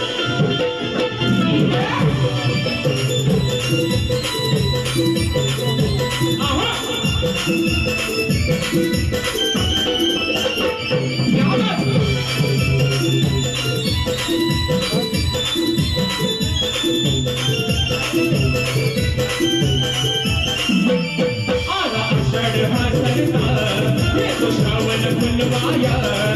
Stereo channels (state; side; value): identical; both; correlation 1.00